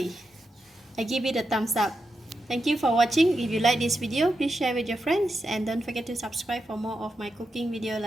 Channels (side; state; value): both; normal; correlation 0.87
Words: I give it a thumbs up. Thank you for watching. If you like this video, please share with your friends and don't forget to subscribe for more of my cooking video